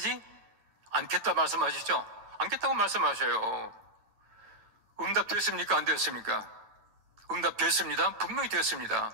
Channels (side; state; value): left; late; 9.0 ms